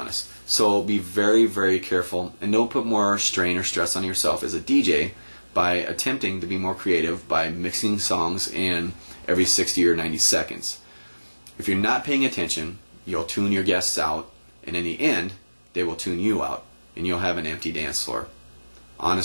So be very, very careful, and don't put more strain or stress on yourself as a DJ by attempting to be more creative by mixing songs in every 60 or 90 seconds. If you're not paying attention, you'll tune your guests out, and in the end, they will tune you out, and you'll have an empty dance floor.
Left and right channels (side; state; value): both; inverted; correlation -1.00